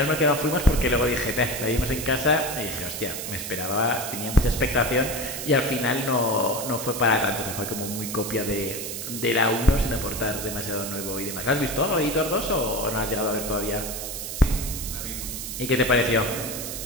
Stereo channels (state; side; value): noise; right; hiss, 6 dB below the sound